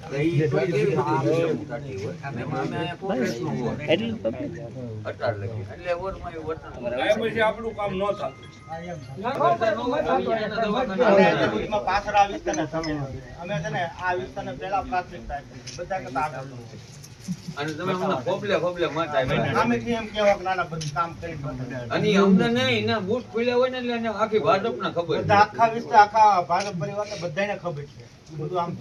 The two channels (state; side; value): identical; both; correlation 1.00